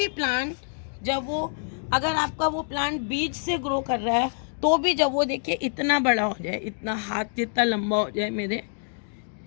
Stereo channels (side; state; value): right; silent; digital silence